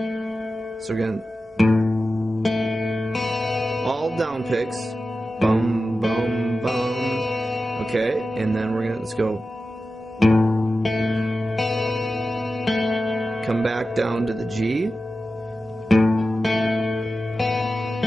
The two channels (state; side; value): normal; both; correlation 0.93